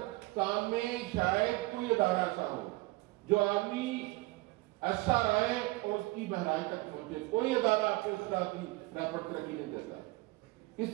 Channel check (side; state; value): left; quieter; 22.4 dB